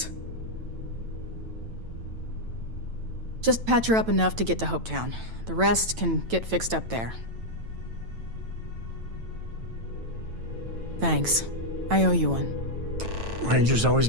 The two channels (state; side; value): late; left; 9.0 ms